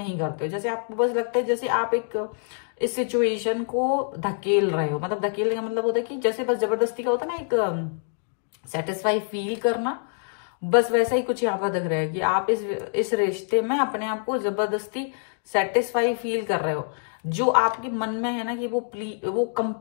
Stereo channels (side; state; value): right; silent; digital silence